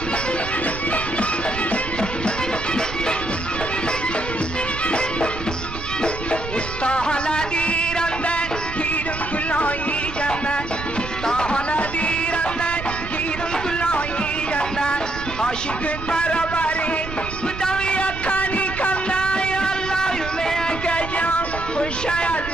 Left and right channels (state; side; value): noise; right; rumble, 9 dB below the sound